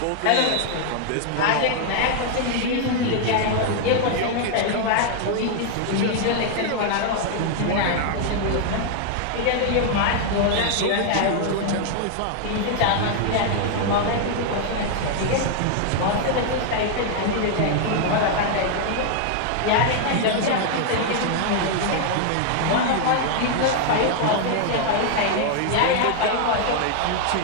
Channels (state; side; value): different; both; correlation 0.00